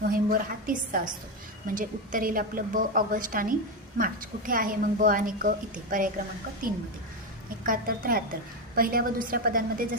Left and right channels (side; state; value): both; normal; correlation 0.10